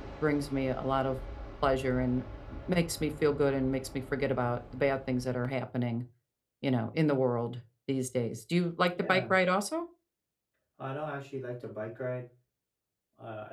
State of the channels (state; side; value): identical; both; correlation 1.00